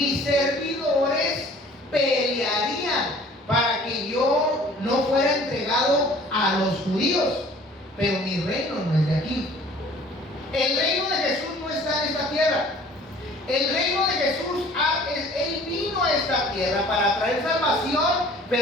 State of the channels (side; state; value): both; normal; correlation 0.51